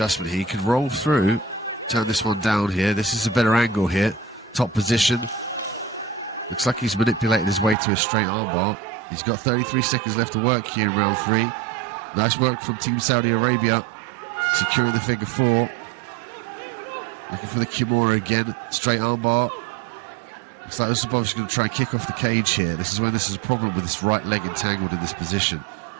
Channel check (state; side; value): drops out; left; at 7.8 s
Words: here. He can roll through, turn this one down here. This is a better angle here. Top position. Looks like he's manipulated his way to a straight armbar. He's got 33 seconds left to work here in round 3. Nice work from Team Saudi Arabia. Securing the figure 4. Looking for the Kimura again. Straight armbar. Looks like Zhussupov is going to try and kick off the cage here. This is when this is a problem with this right leg entangled in this position.